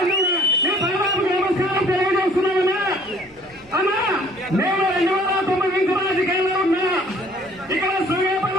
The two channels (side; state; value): both; normal; correlation 0.56